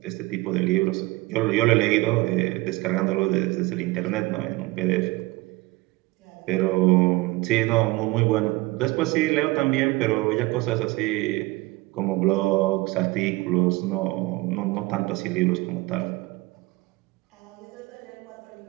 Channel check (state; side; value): quieter; left; 21.3 dB